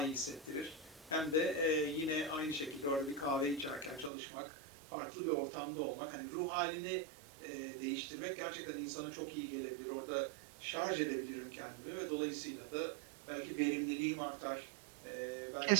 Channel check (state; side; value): drops out; left; at 4.1 s